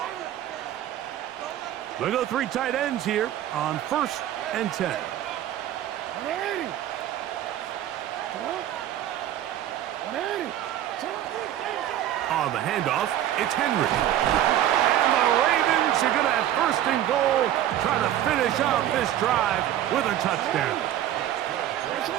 We'll go 3 tight ends here on 1st and 10. On the handoff, it's Henry. And the Ravens are going to have 1st and goal, trying to finish off this drive with a touchdown.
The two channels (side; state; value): left; quieter; 12.0 dB